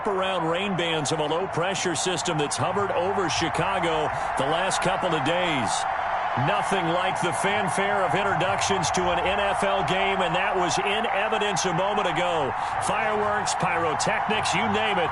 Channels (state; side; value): identical; both; correlation 1.00